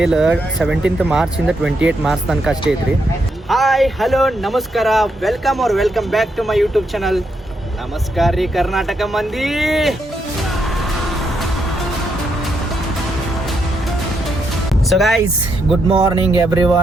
17th ಮಾರ್ಚಿಂದ 28 ಮಾರ್ಚ್ ತನಕ ಅಷ್ಟೇ ಐತ್ರಿ. ಹಾಯ್ ಹಲೋ ನಮಸ್ಕಾರ, welcome back to my YouTube channel. ನಮಸ್ಕಾರ ರೀ ಕರ್ನಾಟಕ ಮಂದಿ. So guys, good morning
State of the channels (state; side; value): normal; both; correlation 0.80